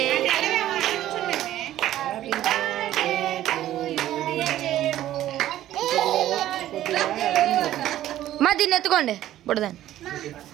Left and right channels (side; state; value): left; quieter; 13.2 dB